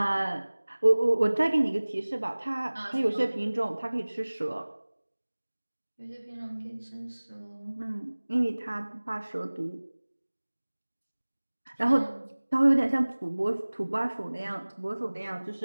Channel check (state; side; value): inverted; both; correlation -1.00